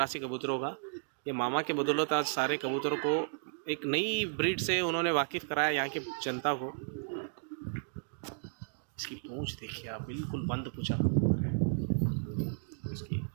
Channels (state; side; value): silent; left; digital silence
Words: कबूतरों का, ये मामा के बदौलत आज सारे कबूतरों को एक नई ब्रीड से उन्होंने वाकिफ़ कराया यहाँ की जनता को। इसकी पूंछ देखिए आप, बिल्कुल बंद पूंछा कबूतर है। इसकी